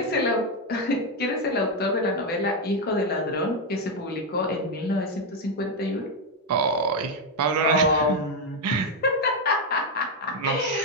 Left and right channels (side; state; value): both; normal; correlation 0.04